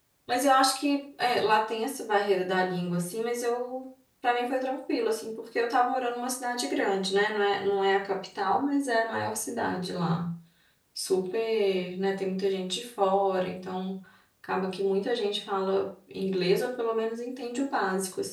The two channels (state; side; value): identical; both; correlation 1.00